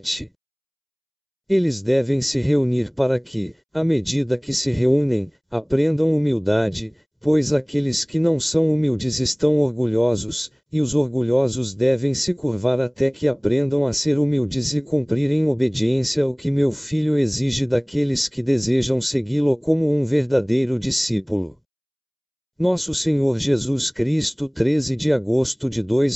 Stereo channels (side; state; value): both; identical; correlation 1.00